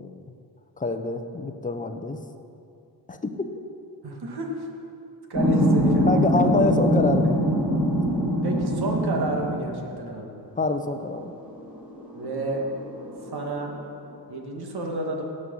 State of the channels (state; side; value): normal; both; correlation 0.42